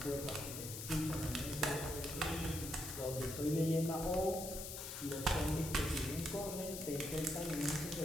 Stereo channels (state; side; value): noise; left; hiss, 7 dB below the sound